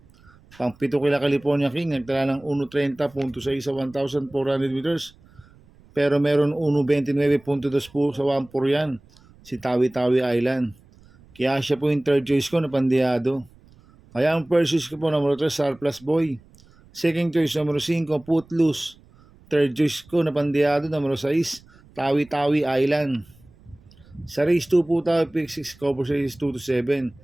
Pang 7 kila California King, nagtala ng 1.30.6 sa 1,400 meters. Pero meron 1.29.2 po sa 1.4 yan, si Tawi-Tawi Island. Kaya siya po yung third choice ko na pandiyado. Kaya ang first choice ko po, numero 3, Surplus Boy. Second choice, numero 5, Footloose. Third choice ko na pandiyado, numero 6, Tawi-Tawi Island. Sa race 2 po tayo, pick 6, cover sa race 2 to 7.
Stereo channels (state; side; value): noise; right; rumble, 27 dB below the sound